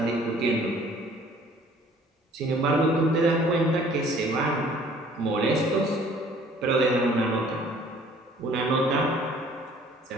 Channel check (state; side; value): normal; both; correlation 0.55